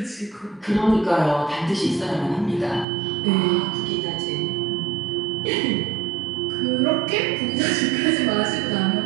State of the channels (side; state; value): left; drops out; at 2.9 s